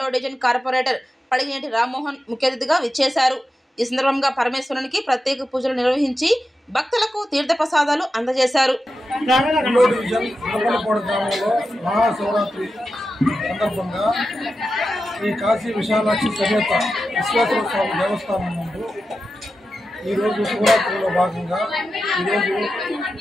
డివిజన్ కార్పొరేటర్ పడిగేటి రామ్మోహన్ ముఖ్య అతిథిగా విచ్చేశారు। ఈ సందర్భంగా పరమేశ్వరునికి ప్రత్యేక పూజలు నిర్వహించి భక్తులకు తీర్థప్రసాదాలు అందజేశారు। 2వ డివిజన్ గుడుపులపాడి గ్రామంలో మహాశివరాత్రి సందర్భంగా ఈ కాశీ విశాలాక్షి సమేత విశ్వేశ్వర స్వామి దేవస్థానం ముందు ఈ రోజు శివరాత్రిలో భాగంగా ఈరోజు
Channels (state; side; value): normal; both; correlation 0.91